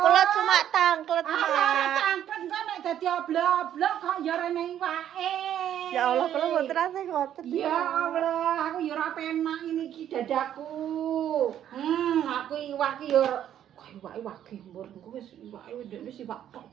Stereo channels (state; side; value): quieter; left; 10.6 dB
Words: cuma tangklet, Ah, Mak. tangklet kok nek dadi oblok-oblok kok ya rene iwake. Ya Allah, kula mboten ate ngoten. Ya Allah, aku ya ora penak ini iki dadaku. Aku iwak iki ya kok iwake wage mbur engko wis iwake ndekne iwak tok.